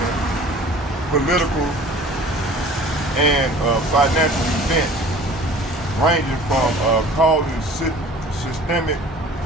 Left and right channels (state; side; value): normal; both; correlation 0.46